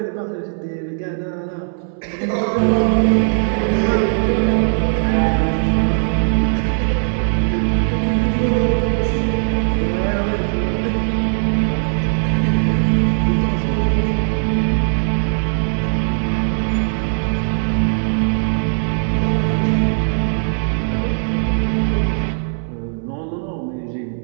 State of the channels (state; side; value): silent; left; 67 dB below the other